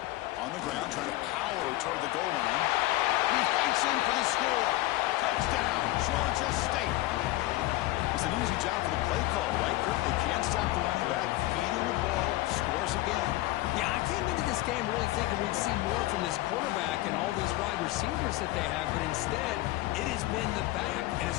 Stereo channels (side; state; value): right; quieter; 17.7 dB